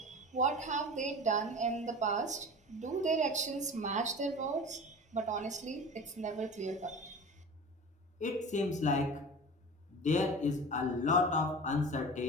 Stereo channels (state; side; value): normal; both; correlation 0.35